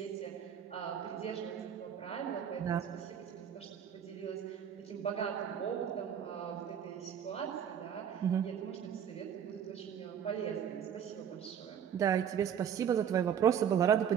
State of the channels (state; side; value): quieter; left; 8.5 dB